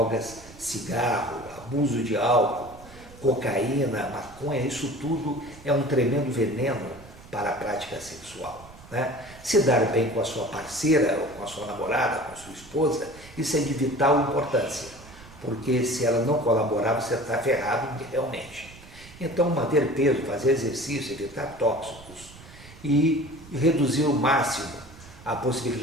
cigarro, abuso de álcool, cocaína, maconha. Isso tudo é um tremendo veneno para a prática sexual, né? Se dar bem com a sua parceira, ou com a sua namorada, com a sua esposa, isso é de vital importância, porque se ela não colaborar, você está ferrado realmente. Então, manter peso, fazer exercício, evitar tóxicos e reduzir ao máximo a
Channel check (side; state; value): right; noise; rumble, 20 dB below the sound